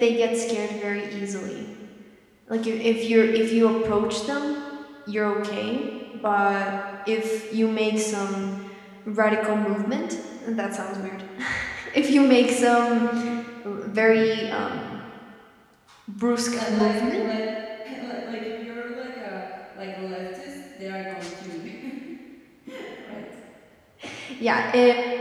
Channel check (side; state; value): both; identical; correlation 1.00